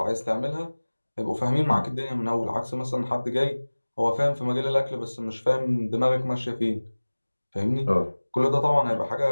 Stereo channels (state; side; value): inverted; both; correlation -1.00